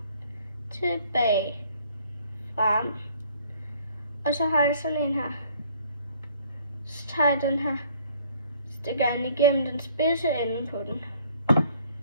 tilbage, frem. Og så har jeg sådan en her. Så tager jeg den her, stikker den igennem den spidse ende på den.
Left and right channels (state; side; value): inverted; both; correlation -0.59